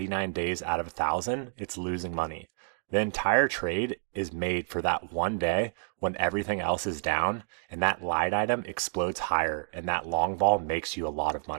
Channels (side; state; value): left; silent; digital silence